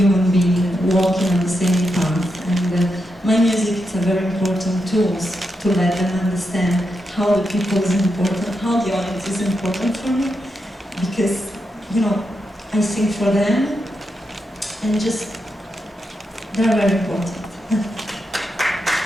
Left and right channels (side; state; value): both; normal; correlation 0.85